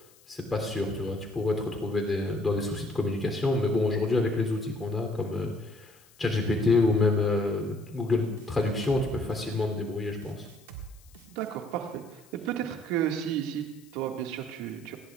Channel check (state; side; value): noise; left; hiss, 27 dB below the sound